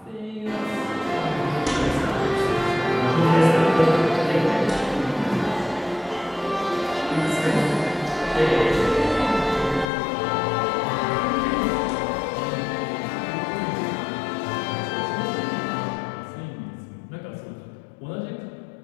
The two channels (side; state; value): right; drops out; at 9.9 s